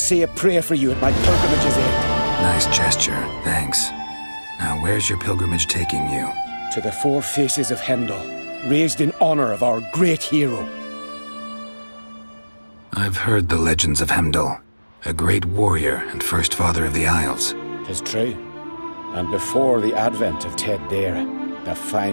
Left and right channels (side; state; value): both; inverted; correlation -1.00